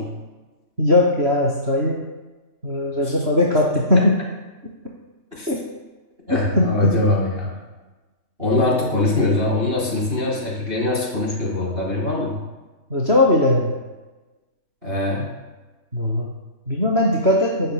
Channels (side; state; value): left; late; 2.8 ms